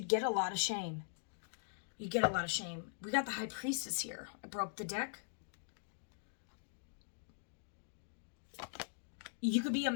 get a lot of shame. We got the High Priestess here. I broke the deck. You could be a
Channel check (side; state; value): right; silent; digital silence